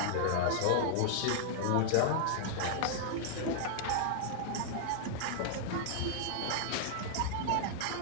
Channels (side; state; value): both; different; correlation -0.01